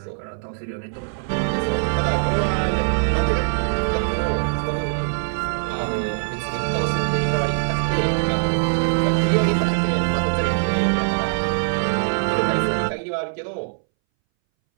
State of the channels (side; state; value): left; silent; 62 dB below the other